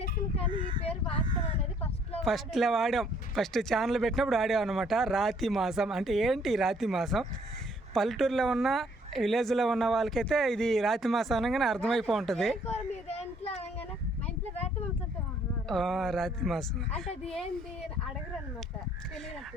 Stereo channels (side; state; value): both; normal; correlation 0.64